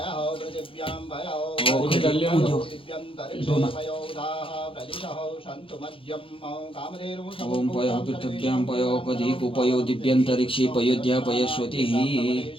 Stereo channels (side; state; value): right; late; 0.26 ms